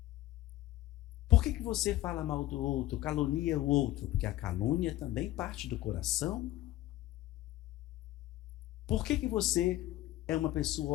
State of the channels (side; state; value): right; quieter; 15.2 dB